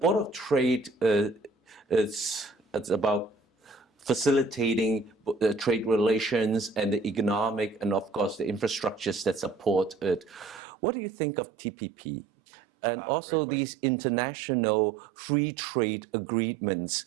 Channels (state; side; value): drops out; left; at 10.6 s